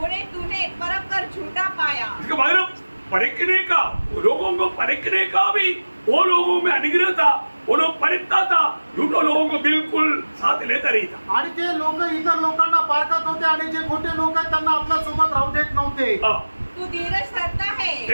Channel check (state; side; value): inverted; both; correlation -1.00